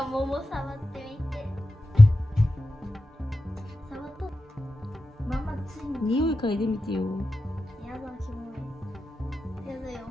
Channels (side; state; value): both; normal; correlation 0.92